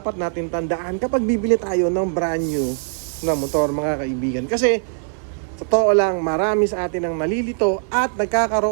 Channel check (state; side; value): silent; left; 65 dB below the other